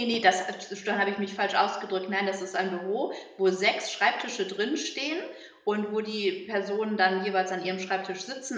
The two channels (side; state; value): both; identical; correlation 1.00